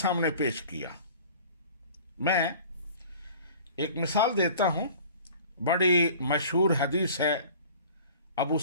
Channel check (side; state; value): both; inverted; correlation -0.45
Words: پیش کیا۔ میں ایک مثال دیتا ہوں، بڑی مشہور حدیث ہے، ابو